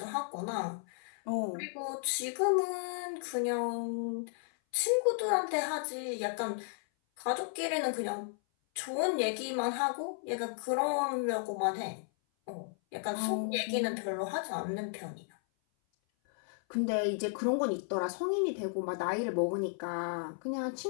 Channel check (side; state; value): right; silent; 55 dB below the other